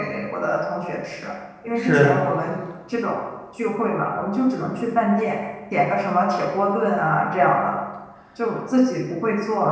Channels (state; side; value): identical; both; correlation 1.00